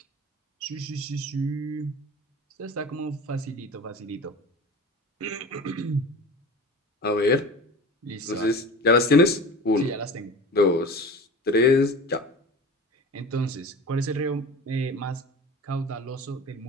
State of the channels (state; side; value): normal; both; correlation 0.36